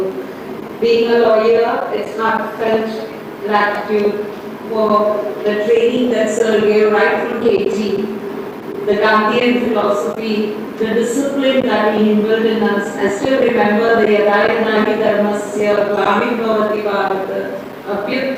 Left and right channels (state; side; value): identical; both; correlation 1.00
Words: Being a lawyer, it's heartfelt gratitude for the training that Sir gave right from KG, the Gandhian philosophy, the discipline that he inbuilt in us. I still remember the Yadayanahi Dharmasya, Gramim Bhavati Bharata,